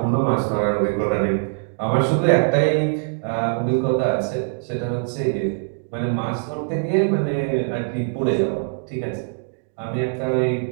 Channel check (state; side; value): silent; left; digital silence